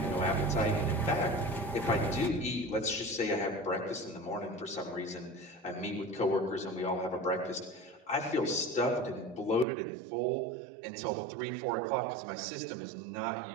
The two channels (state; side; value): drops out; left; at 9.7 s